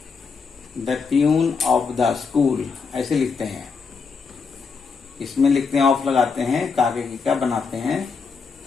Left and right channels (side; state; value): right; quieter; 5.2 dB